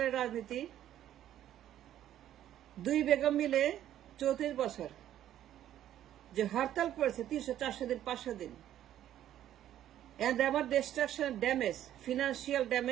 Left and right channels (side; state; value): left; quieter; 11.8 dB